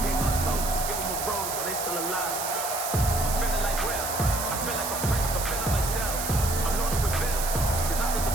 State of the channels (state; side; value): noise; right; hiss, 4 dB below the sound